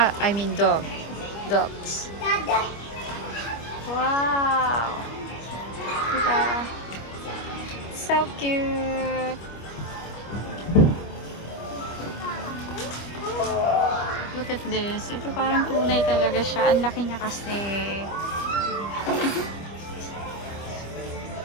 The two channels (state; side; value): late; right; 25 ms